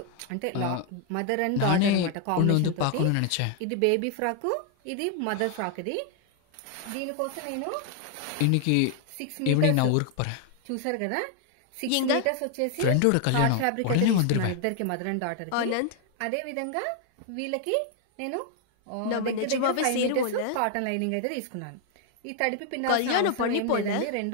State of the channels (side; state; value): both; different; correlation 0.00